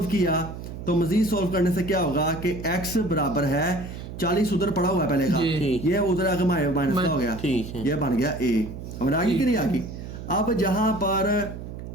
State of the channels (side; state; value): right; noise; hum, 10 dB below the sound